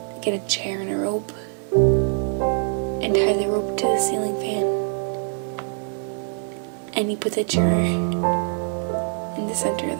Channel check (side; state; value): left; silent; 62 dB below the other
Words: get a chair and a rope and tie the rope to the ceiling fan. And you put the chair in the center of